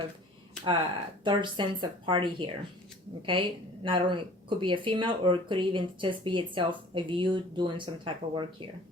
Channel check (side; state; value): both; normal; correlation 0.48